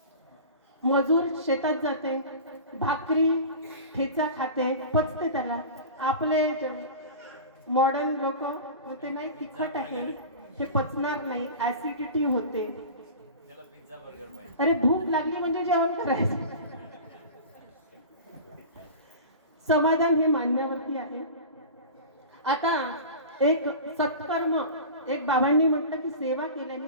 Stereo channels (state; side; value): inverted; both; correlation -0.34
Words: मजूर शेतात जाते, भाकरी ठेचा खाते, पचते त्याला. आपले मॉडर्न लोक म्हणते नाही तिखट आहे, हे पचणार नाही, ऍसिडिटी होते. अरे भूक लागली म्हणजे जेवण करायचं. समाधान हे मानण्यावरती आहे. आता एक सत्कर्म, एक बाबांनी म्हटलं की सेवा केल्याने